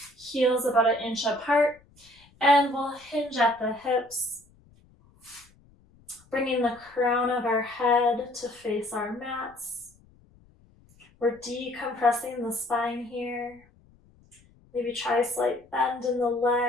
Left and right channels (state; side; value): noise; left; rumble, 29 dB below the sound